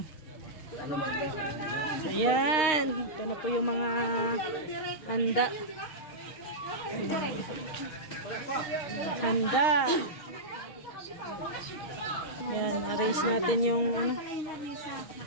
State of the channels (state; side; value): late; right; 6.4 ms